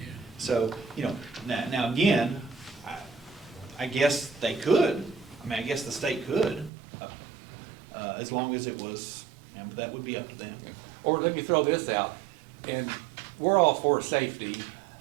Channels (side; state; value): left; drops out; at 6.7 s